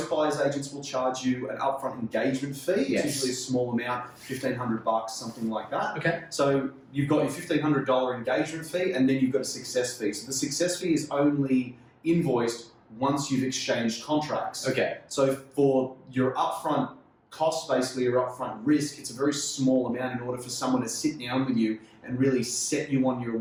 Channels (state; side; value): identical; both; correlation 1.00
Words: buyer's agents will charge you an upfront engagement fee. Yes. It's usually a small amount, $1,500, something like that. Okay. So you've got your $1,500 engagement fee, and then you've got a success fee. So the success fee is only invoiced once you've exchanged contracts. Okay. So for your upfront cost, basically your upfront risk, it's a very small amount in order for someone to sit down with you and really set you on your